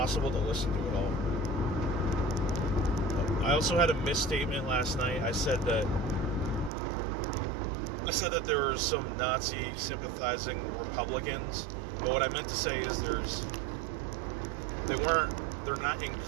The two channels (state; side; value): drops out; left; at 6.7 s